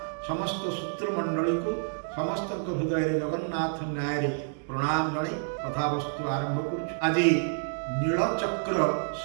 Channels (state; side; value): silent; left; digital silence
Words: समस्त सूत्रमंडली को समस्त हृदय जगन्नाथ न्याय प्रणाम जन कथावस्तु आरंभ कर। आज नीलचक्र